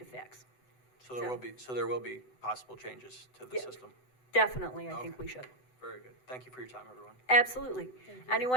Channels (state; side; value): late; right; 7.9 ms